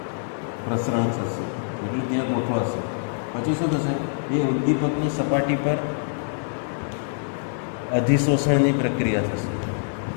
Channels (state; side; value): silent; right; digital silence